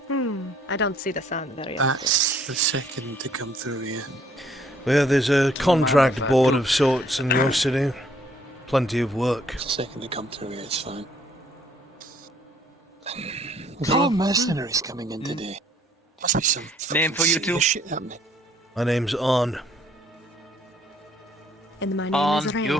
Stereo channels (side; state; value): both; normal; correlation 0.63